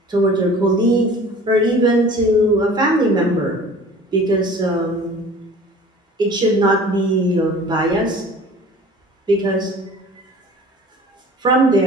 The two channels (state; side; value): normal; both; correlation 0.45